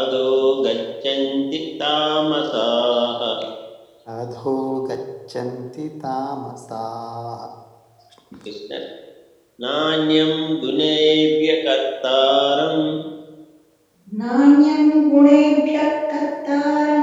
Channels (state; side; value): identical; both; correlation 1.00